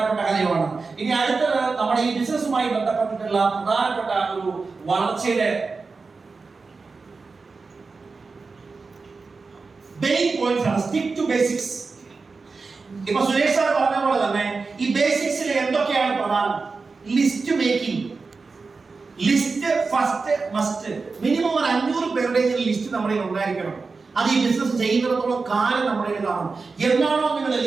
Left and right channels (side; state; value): left; quieter; 4.3 dB